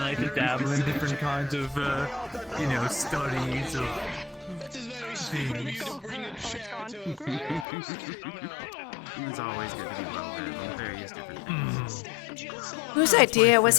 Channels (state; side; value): drops out; right; at 7.7 s